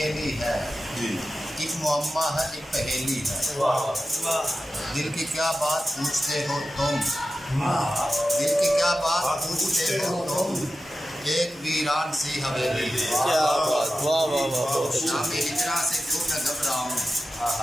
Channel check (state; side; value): normal; both; correlation 0.93